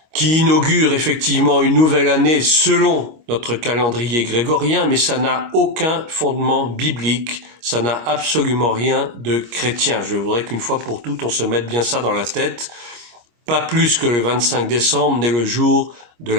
qui inaugure effectivement une nouvelle année selon notre calendrier grégorien, mais ça n'a aucun fondement biblique, ça n'a absolument rien de chrétien. Je voudrais qu'une fois pour toutes, on se mette bien ça dans la tête. Pas plus que le 25 décembre n'est le jour de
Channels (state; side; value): late; left; 25 ms